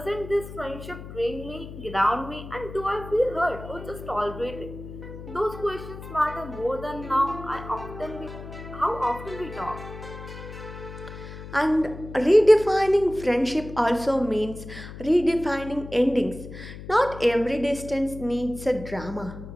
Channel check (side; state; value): left; noise; hum, 12 dB below the sound